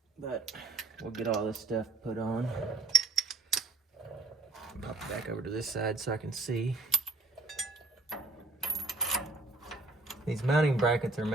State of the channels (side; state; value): left; quieter; 3.4 dB